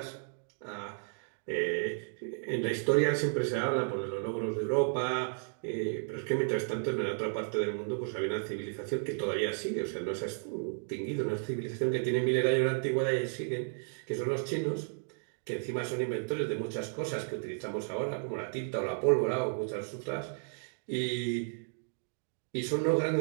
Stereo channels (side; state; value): left; silent; digital silence